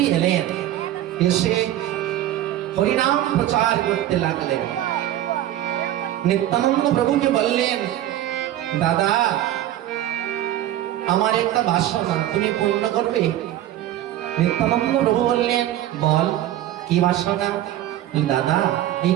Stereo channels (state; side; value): quieter; left; 13.1 dB